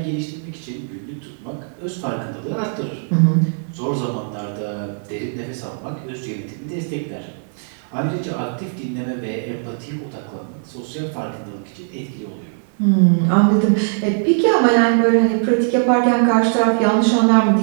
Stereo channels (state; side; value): silent; left; 65 dB below the other